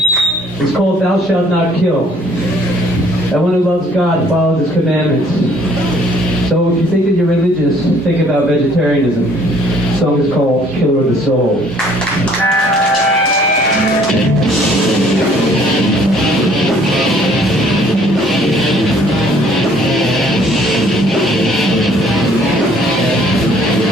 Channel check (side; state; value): both; normal; correlation 0.60